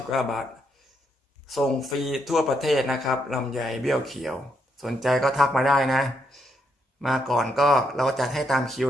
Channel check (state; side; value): normal; both; correlation 0.78